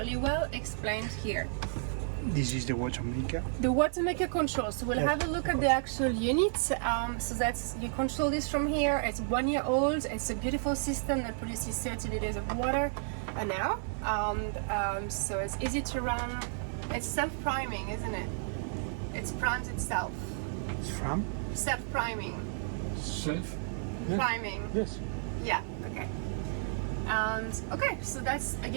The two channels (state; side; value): silent; left; 56 dB below the other